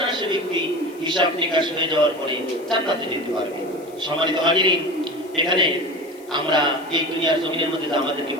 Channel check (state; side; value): noise; left; hiss, 25 dB below the sound